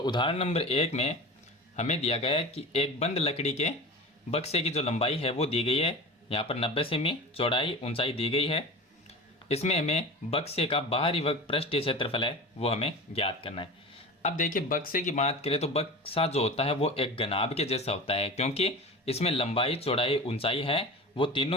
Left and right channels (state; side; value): normal; both; correlation 0.32